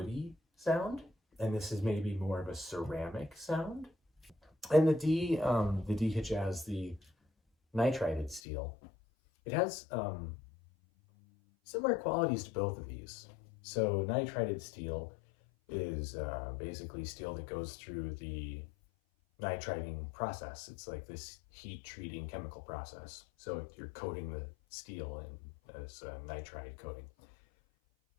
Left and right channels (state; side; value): drops out; right; at 8.4 s